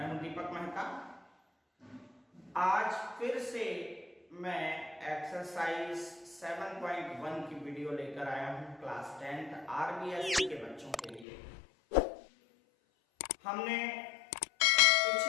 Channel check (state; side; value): drops out; right; at 11.2 s